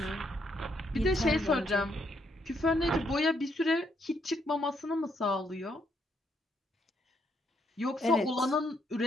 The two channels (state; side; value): normal; both; correlation 0.74